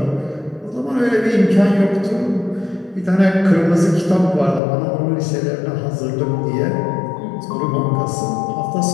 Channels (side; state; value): right; drops out; at 4.6 s